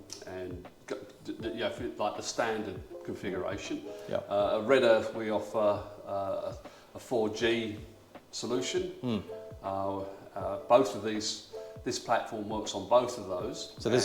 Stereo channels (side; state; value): both; identical; correlation 1.00